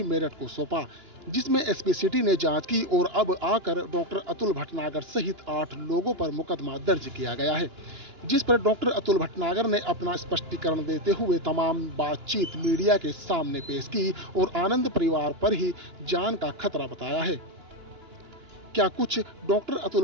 मेरठ को सौंपा, जिसमें एसपी सिटी ने जांच की और अब आकर डॉक्टर अतुल भटनागर सहित 8 लोगों पर मुकदमा दर्ज किया गया है, जिस पर डॉक्टर अतुल भटनागर ने अपना स्पष्टीकरण देते हुए तमाम बातचीत मीडिया के सामने पेश की और आनंद परिवार पर ही जान का खतरा बताया है। क्या कुछ डॉक्टर अतुल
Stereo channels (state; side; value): late; left; 2.9 ms